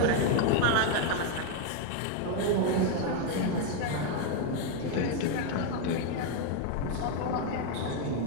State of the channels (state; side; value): different; both; correlation 0.01